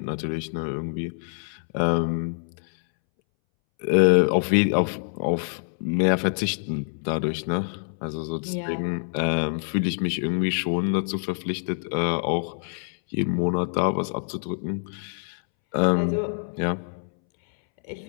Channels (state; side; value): silent; right; 61 dB below the other